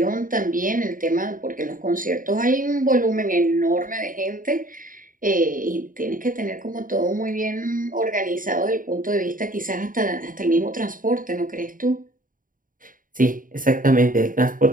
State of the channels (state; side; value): late; left; 0.39 ms